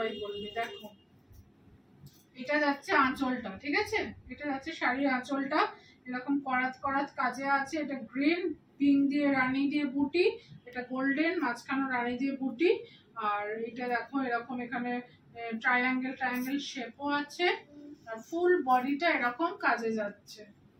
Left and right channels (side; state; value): both; identical; correlation 1.00